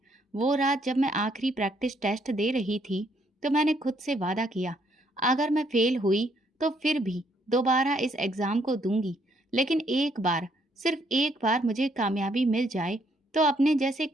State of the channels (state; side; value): normal; both; correlation 0.70